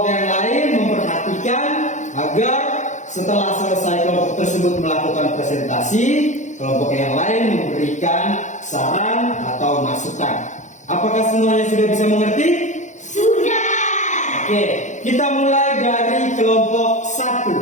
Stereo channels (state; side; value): late; right; 0.35 ms